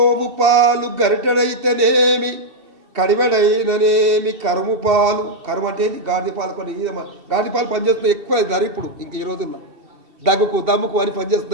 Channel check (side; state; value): left; late; 2.7 ms